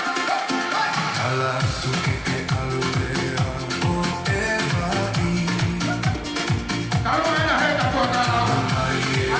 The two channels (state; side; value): identical; both; correlation 1.00